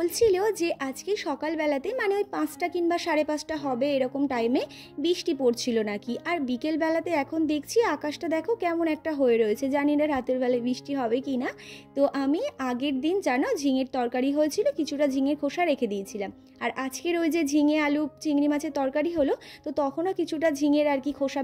যে আজকে সকালবেলাতে মানে ওই 5টা কিংবা 5:30 হবে এরকম টাইমে বৃষ্টি পড়ছিল নাকি। আর বিকেলবেলাতে এখন দেখছি আকাশটা দেখো কেমন একটা হয়ে রয়েছে, জানি না রাতের বেলায় বৃষ্টি হবে কি না। তো আমি আগের দিন জানো ঝিঙের তরকারি হয়েছিল, কিছুটা ঝিঙের খোসা রেখে দিয়েছিলাম। আর আজকের ওই যে ঝিঙে আলু চিংড়ি মাছের তরকারি হলো, তো তখনও কিছুটা ঝিঙের আর কি খোসা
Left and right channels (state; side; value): identical; both; correlation 1.00